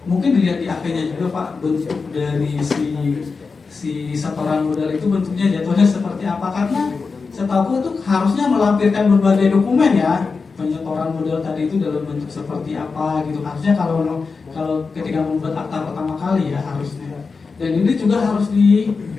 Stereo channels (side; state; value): right; quieter; 4.6 dB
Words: mungkin dilihat di akte-nya juga Pak, bentuk dari si setoran modal itu bentuknya jatuhnya seperti apa, karena setahu itu harusnya melampirkan berbagai dokumen ya, penyetoran modal tadi itu dalam bentuk seperti apa gitu. Harusnya kalau ketika membuat akta pertama kali ya harusnya. Dan ini juga harus